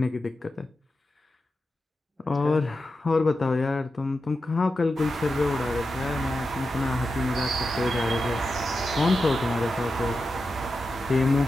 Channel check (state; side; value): normal; both; correlation 0.90